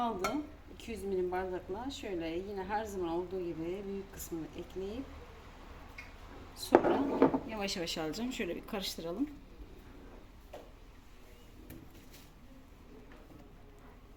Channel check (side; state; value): both; identical; correlation 1.00